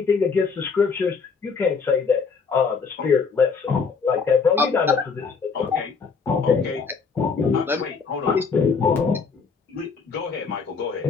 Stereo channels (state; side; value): quieter; right; 5.3 dB